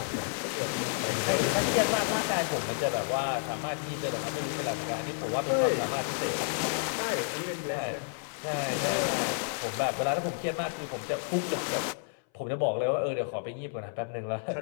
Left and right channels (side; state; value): right; silent; 57 dB below the other